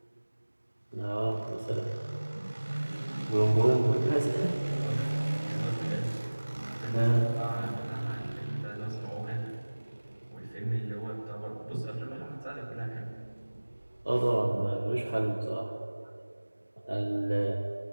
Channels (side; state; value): both; inverted; correlation -1.00